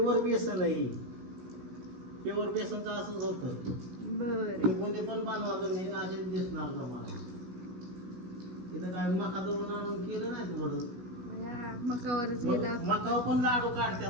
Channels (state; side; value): late; left; 16 ms